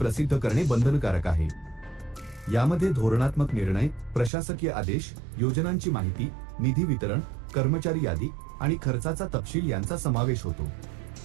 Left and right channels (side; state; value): left; drops out; at 4.3 s